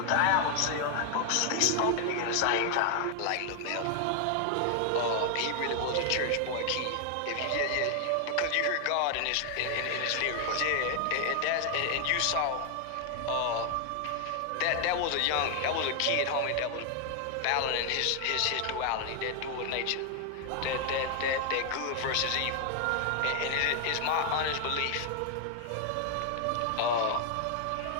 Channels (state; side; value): different; both; correlation 0.00